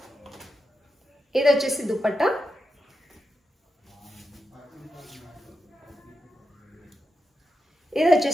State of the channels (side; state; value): both; normal; correlation 0.87